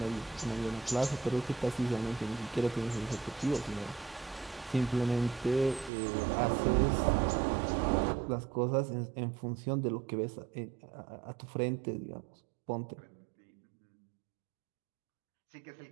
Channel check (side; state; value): left; drops out; at 5.9 s